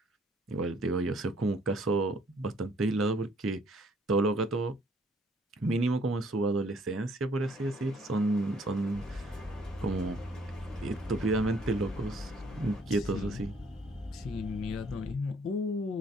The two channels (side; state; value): both; normal; correlation 0.63